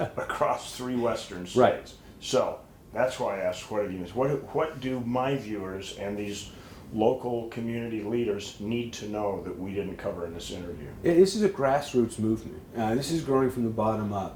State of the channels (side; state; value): both; identical; correlation 1.00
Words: 3 western states. Right. So that's why I asked, what have you missed? What do my viewers and these local community leaders need to know that we didn't cover in this interview? This is a grassroots movement. This is growing from the bottom